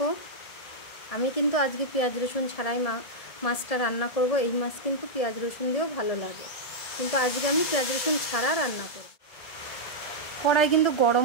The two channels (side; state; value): right; late; 1.7 ms